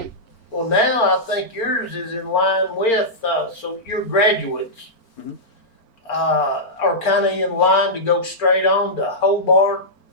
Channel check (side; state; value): right; late; 4.4 ms